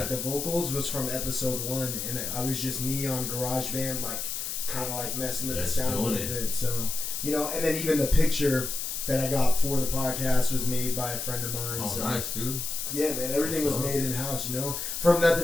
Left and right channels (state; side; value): noise; left; hiss, 4 dB below the sound